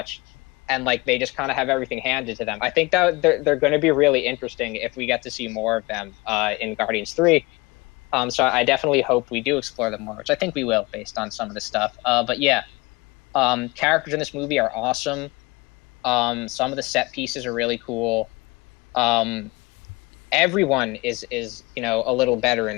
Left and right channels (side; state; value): right; quieter; 24.4 dB